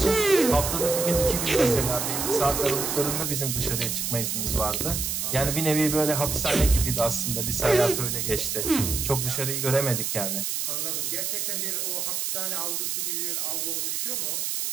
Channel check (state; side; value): noise; right; hiss, 1 dB below the sound